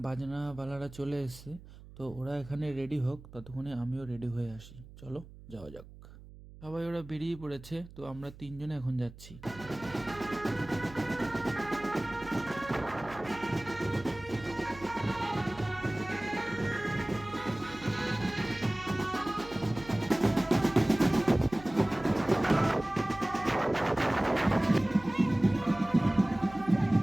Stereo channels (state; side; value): noise; right; hum, 18 dB below the sound